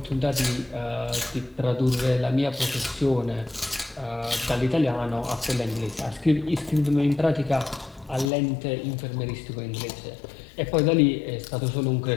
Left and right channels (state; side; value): drops out; right; at 8.3 s